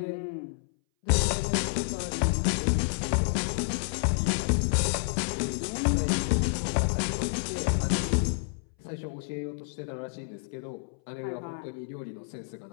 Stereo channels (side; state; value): right; silent; 58 dB below the other